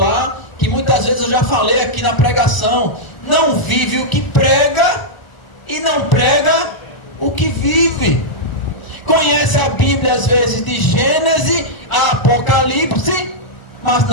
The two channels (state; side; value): late; right; 1.0 ms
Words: que muitas vezes eu já falei aqui na pregação: não vive o que prega e não prega o que vive. Conhece a Bíblia às vezes de Gênesis a Apocalipse, mas